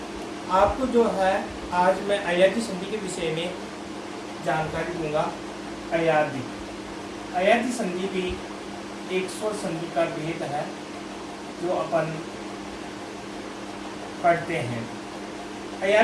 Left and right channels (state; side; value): identical; both; correlation 1.00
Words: आपको जो है आज मैं अयादी संधि के विषय में जानकारी दूंगा। अयादी अयादी संधि भी एक स्वर संधि का भेद है जो अपन पढ़ते हैं।